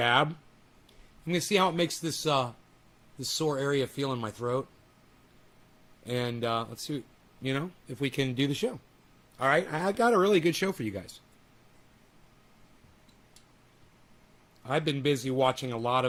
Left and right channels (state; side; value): identical; both; correlation 1.00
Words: I'm going to see how it makes this sore area feel in my throat. And let's see, you know, if we can do the show. All right, I got a really good show for you guys. I've been busy watching a lot